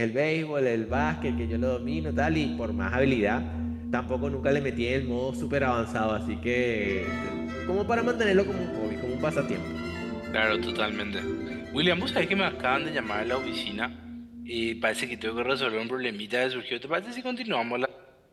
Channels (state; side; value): identical; both; correlation 1.00